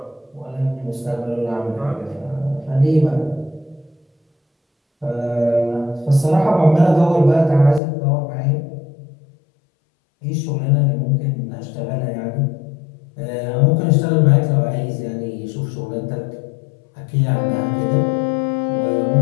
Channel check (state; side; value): drops out; right; at 7.8 s